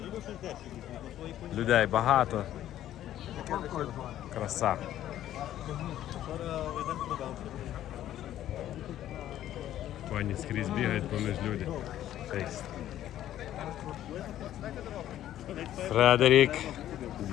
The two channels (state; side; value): quieter; right; 12.3 dB